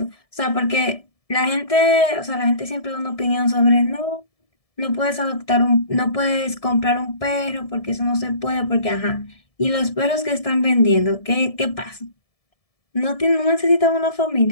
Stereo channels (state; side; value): late; right; 1.7 ms